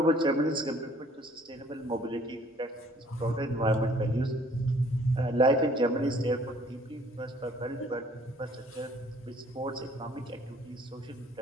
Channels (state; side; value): normal; both; correlation 0.58